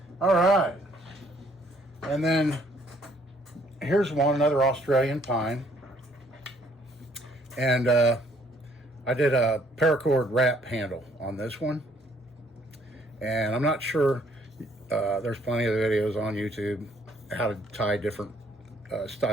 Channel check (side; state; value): both; normal; correlation 0.64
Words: All right, and then here's another Australian pine, and I did a paracord wrap handle on this one, and I'm not sure, there's plenty of videos on YouTube how to tie different